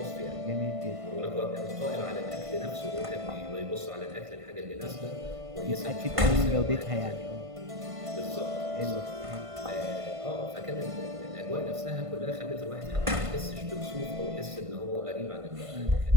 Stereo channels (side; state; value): left; late; 1.5 ms